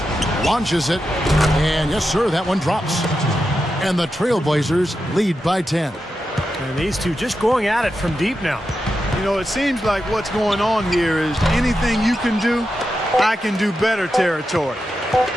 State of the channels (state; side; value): normal; both; correlation 0.89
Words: Launches it. And yes, sir, that one drops. And the Trailblazers lead by 10. And these two just going at it from deep now. You know, it seems like what's going on here is anything you can do, I can do better territory.